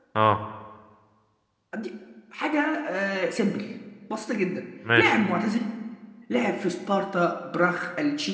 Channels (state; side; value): identical; both; correlation 1.00